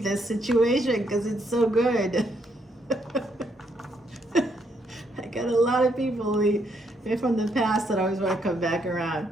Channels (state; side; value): normal; both; correlation 0.74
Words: this situation because it's so good. I got a lot of people from the past that always want to come back around.